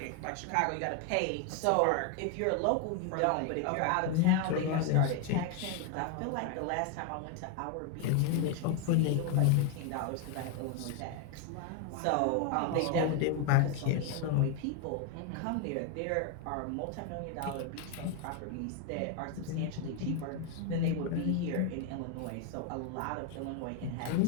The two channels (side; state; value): both; different; correlation 0.01